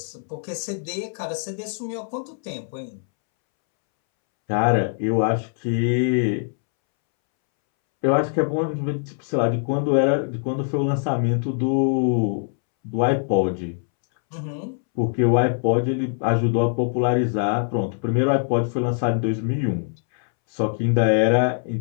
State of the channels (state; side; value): silent; right; 64 dB below the other